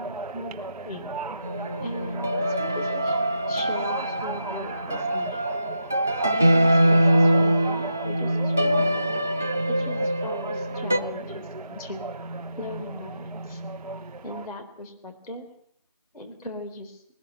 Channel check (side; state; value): both; inverted; correlation -0.85